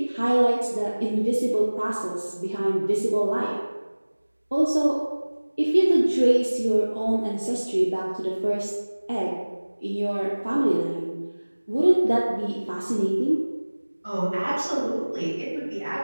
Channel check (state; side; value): inverted; both; correlation -1.00